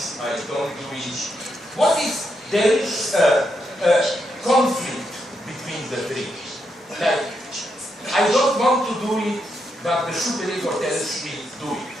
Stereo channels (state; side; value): normal; both; correlation 0.81